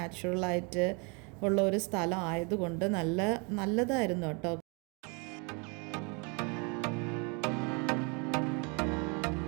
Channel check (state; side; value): quieter; left; 32.5 dB